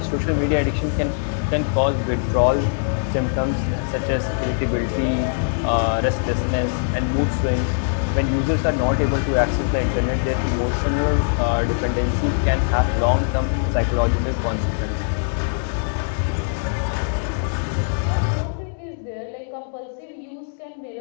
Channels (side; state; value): right; silent; digital silence